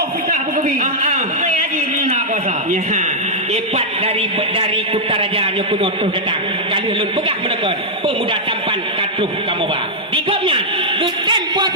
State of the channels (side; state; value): both; normal; correlation -0.06